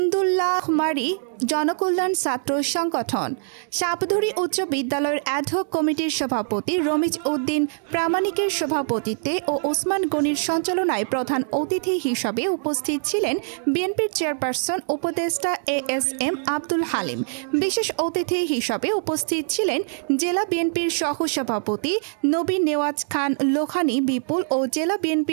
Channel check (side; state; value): left; silent; digital silence